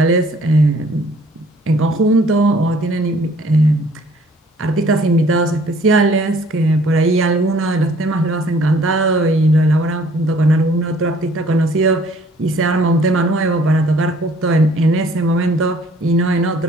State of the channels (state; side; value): normal; both; correlation 0.57